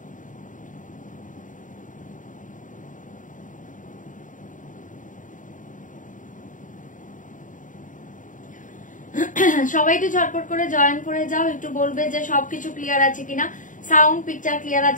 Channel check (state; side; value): late; right; 0.38 ms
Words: সবাই একটু ঝটপট করে জয়েন করে যাও, একটু বলবে যে সবকিছু ক্লিয়ার আছে কিনা, সাউন্ড পিকচার ক্লিয়ার